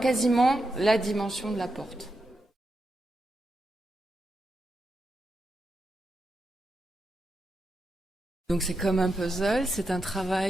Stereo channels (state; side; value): normal; both; correlation 0.86